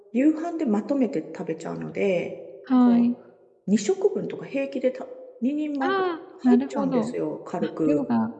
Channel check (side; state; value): both; identical; correlation 1.00